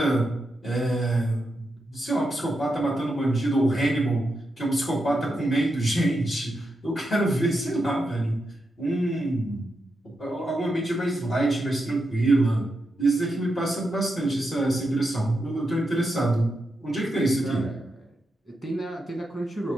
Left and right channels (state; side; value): normal; both; correlation 0.86